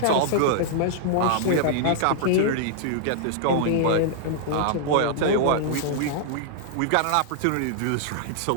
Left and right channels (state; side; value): different; both; correlation -0.01